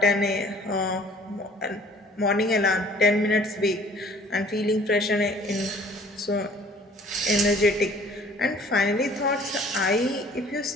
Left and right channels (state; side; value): normal; both; correlation 0.53